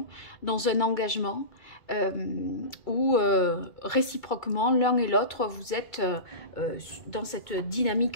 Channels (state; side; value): late; right; 2.3 ms